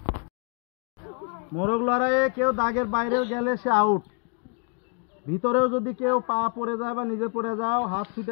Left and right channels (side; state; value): right; quieter; 37.9 dB